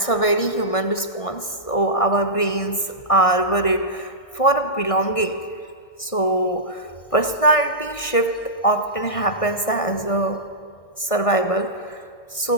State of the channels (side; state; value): right; late; 1.6 ms